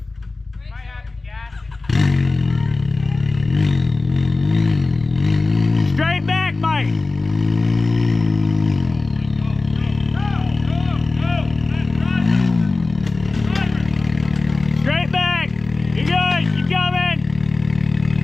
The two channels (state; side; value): quieter; right; 3.4 dB